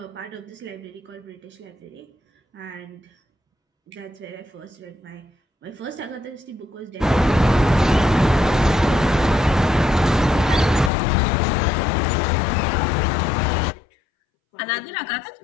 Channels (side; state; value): right; drops out; at 10.9 s